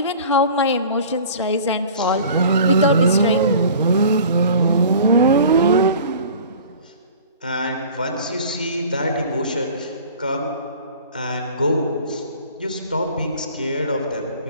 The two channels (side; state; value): both; inverted; correlation -0.44